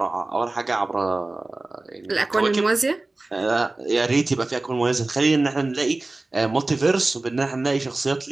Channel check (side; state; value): left; quieter; 3.1 dB